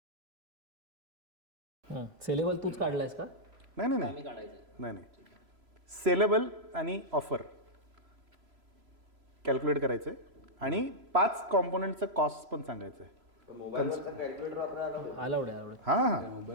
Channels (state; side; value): late; left; 3.0 ms